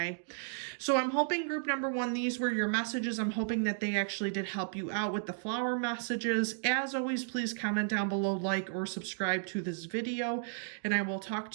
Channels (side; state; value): left; silent; digital silence